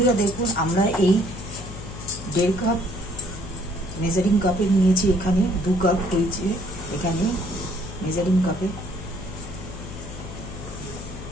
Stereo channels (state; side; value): noise; left; hum, 11 dB below the sound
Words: দেখুন, আমরা এই 1.5 কাপ মেজারিং কাপে নিয়েছি। এখানে 2 কাপ হয়েছে। এখানে মেজারিং কাপে